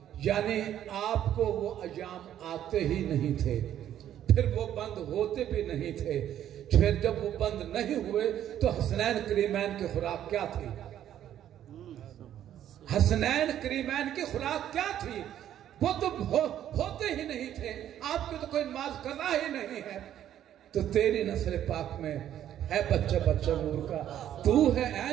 یعنی آپ کو وہ ایام آتے ہی نہیں تھے، پھر وہ بند ہوتے بھی نہیں تھے۔ پھر جب وہ بند نہیں ہوئے تو حسنین کریمین کی خوراک کیا تھی؟ حسنین کریمین کی خوراک کیا تھی؟ وہ تو ہوتے ہی نہیں تھے، آپ کی تو کوئی نماز قضا ہی نہیں ہے۔ تو تیری نسل پاک میں ہے بچہ بچہ نور کا، تو ہے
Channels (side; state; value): left; quieter; 11.0 dB